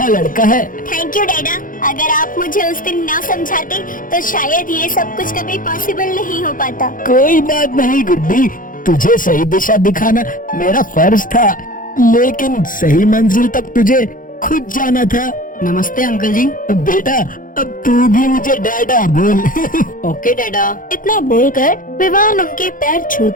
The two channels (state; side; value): late; right; 0.39 ms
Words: लड़का है। थैंक यू डैडा। अगर आप मुझे उस दिन ना समझाते तो शायद ये सब कुछ कभी पॉसिबल नहीं हो पाता। कोई बात नहीं गुड्डी, तुझे सही दिशा दिखाना मेरा फर्ज था, लेकिन सही मंजिल तक तुझे खुद जाना था। नमस्ते अंकल जी। बेटा, अब तू भी मुझे डैडा बोल। ओके डैडा। इतना बोलकर विवान उनके पैर